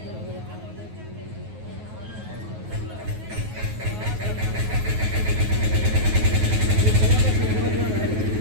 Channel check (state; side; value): late; left; 9.4 ms